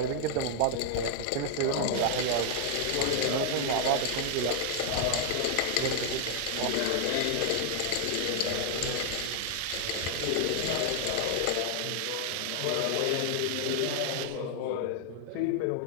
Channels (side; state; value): both; different; correlation 0.00